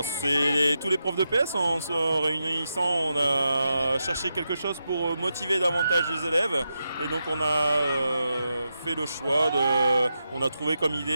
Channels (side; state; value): both; inverted; correlation -0.87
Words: c'est tous les profs de PS, en se réunissant, on a cherché quelque chose pour motiver davantage les élèves et donc on a fait le choix, on a trouvé comme